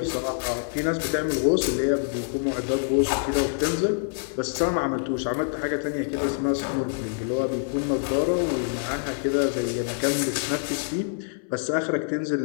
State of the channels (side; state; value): right; silent; 61 dB below the other